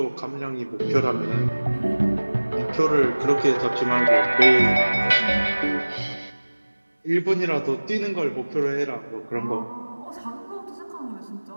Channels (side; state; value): both; inverted; correlation -1.00